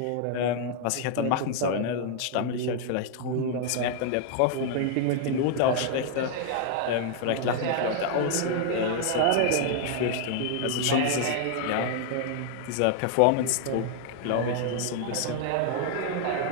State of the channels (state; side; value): different; both; correlation 0.00